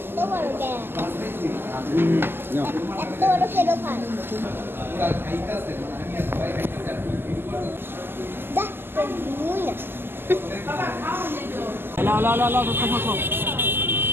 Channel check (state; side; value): late; left; 0.10 ms